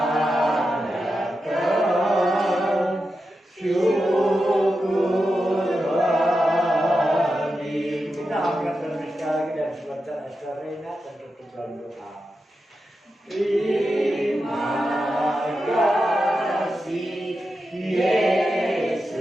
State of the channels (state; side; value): normal; both; correlation 0.89